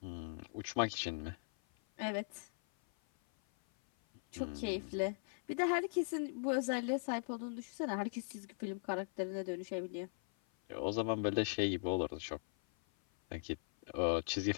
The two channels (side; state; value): right; silent; 51 dB below the other